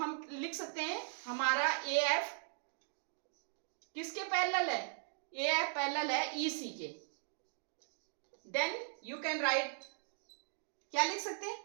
लिख सकते हैं हमारा ए एफ किसके पैरेलल है, ए एफ पैरेलल है ई सी के। देन यू कैन राइट, क्या लिख सकते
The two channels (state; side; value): silent; left; digital silence